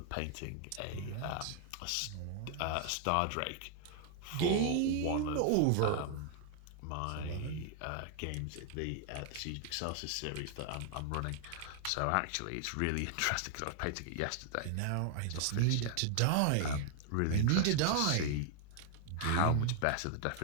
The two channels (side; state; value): both; different; correlation 0.00